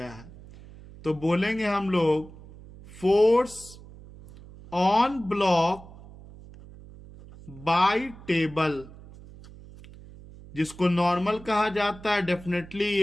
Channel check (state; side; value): noise; right; hum, 19 dB below the sound